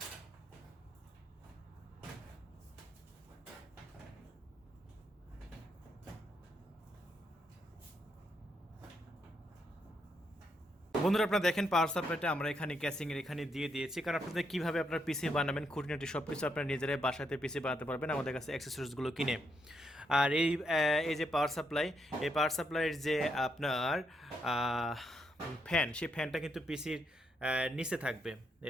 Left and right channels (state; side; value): normal; both; correlation 0.78